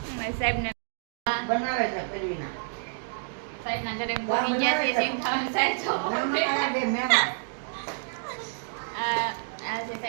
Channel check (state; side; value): silent; left; digital silence